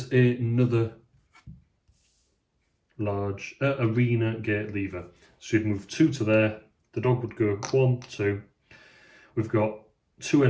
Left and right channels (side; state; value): both; identical; correlation 1.00